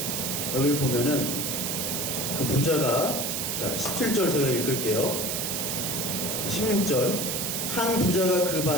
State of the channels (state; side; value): noise; right; hiss, 1 dB below the sound